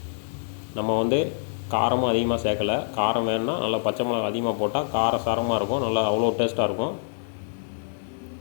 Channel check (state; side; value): silent; right; digital silence